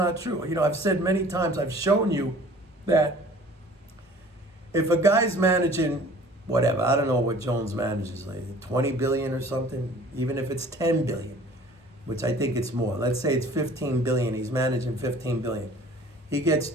true. I've said many times, I've shown you that if a guy's managing whatever, I don't know what Jones manages, like 20 billion or something, even if it's 10 billion, which I think it's more. Let's say it's 15 billion. He's managing 15 billion. He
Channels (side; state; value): both; normal; correlation 0.49